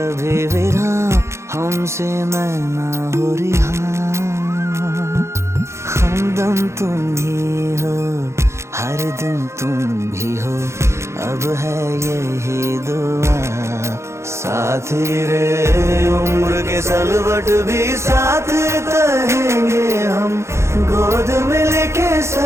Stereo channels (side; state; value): left; late; 0.13 ms